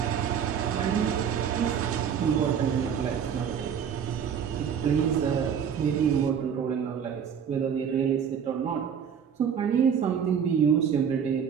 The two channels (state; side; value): quieter; left; 7.7 dB